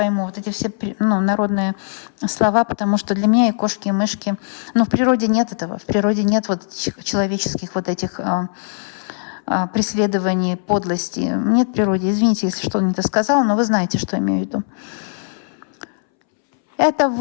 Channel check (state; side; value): silent; right; 65 dB below the other